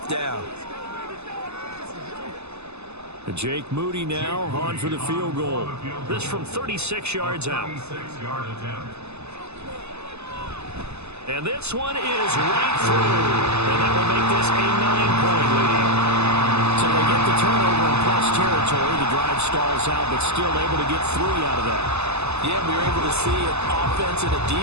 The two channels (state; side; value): late; left; 0.80 ms